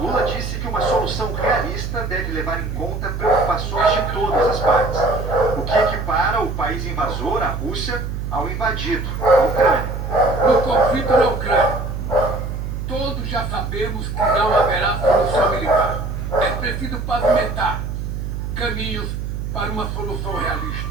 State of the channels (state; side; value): noise; right; hum, 4 dB below the sound